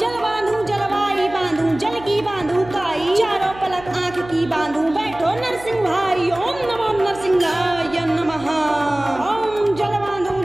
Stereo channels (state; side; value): noise; right; hum, 17 dB below the sound